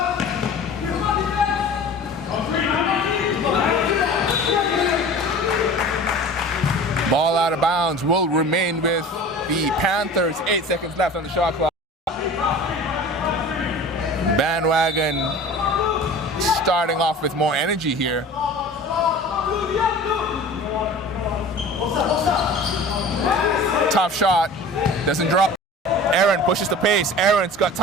Ball out of bounds will remain with the Panthers. 8 seconds left on the shot clock. Bandwagon starting off with more energy here. Tough shot. Doesn't drop. Aaron pushes the pace. Aaron's got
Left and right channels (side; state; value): both; normal; correlation 0.39